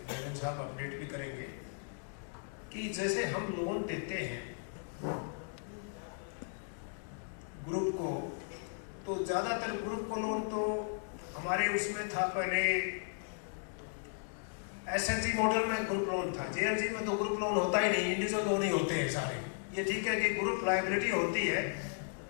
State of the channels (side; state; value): right; silent; digital silence